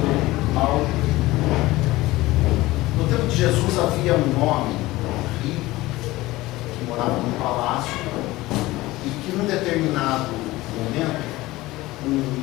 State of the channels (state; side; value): quieter; right; 18.7 dB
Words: mal. No tempo de Jesus havia um homem rico que morava num palácio e que num determinado momento